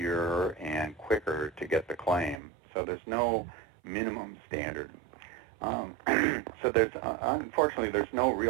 and quicker to get the claim. So there's no minimum standard. So unfortunately, there's no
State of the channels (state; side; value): drops out; left; at 2.4 s